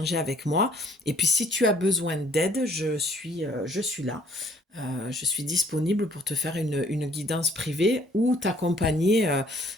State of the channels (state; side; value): normal; both; correlation 0.60